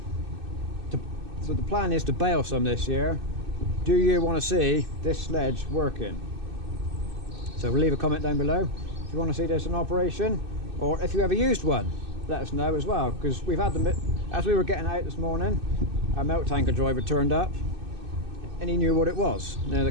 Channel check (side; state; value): left; late; 2.6 ms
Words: So the plan is to bale some this year. Do you want to see this sledge working? So leave a comment down below if you want to see this in operation, or if you ever used one, let us know as well, because we've had them. As we were getting out this morning, our milk tanker driver turned up and he knew what it was. Now there